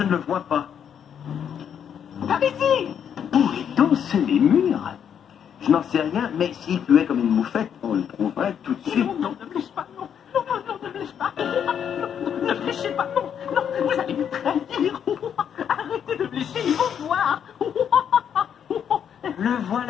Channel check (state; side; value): quieter; right; 8.4 dB